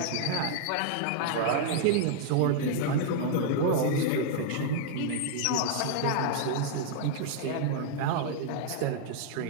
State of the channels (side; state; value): both; different; correlation -0.01